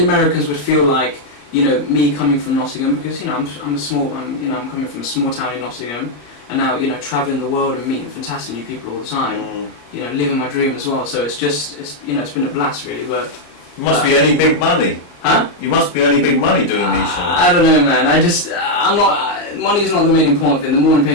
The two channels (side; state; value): right; late; 34 ms